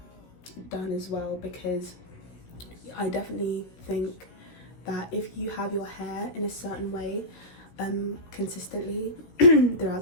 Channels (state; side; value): late; right; 16 ms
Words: as well, because I definitely think that if you have your hair in a certain way consistently throughout